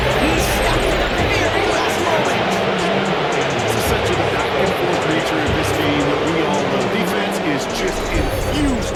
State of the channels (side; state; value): both; identical; correlation 1.00